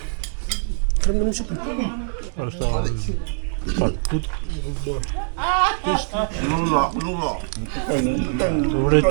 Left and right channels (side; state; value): left; silent; digital silence